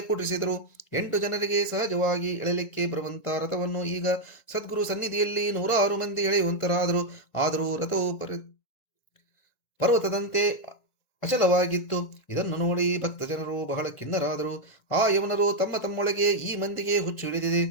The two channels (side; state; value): right; late; 1.9 ms